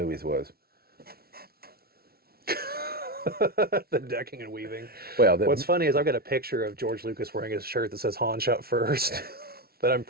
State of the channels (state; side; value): late; left; 0.44 ms